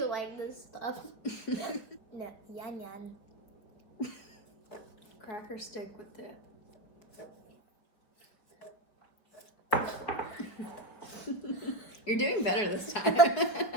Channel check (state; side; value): late; right; 4.8 ms